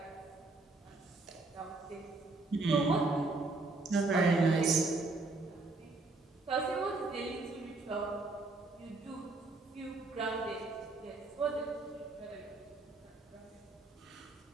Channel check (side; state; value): left; quieter; 3.4 dB